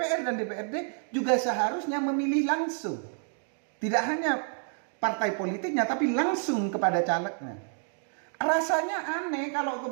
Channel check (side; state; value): left; silent; 55 dB below the other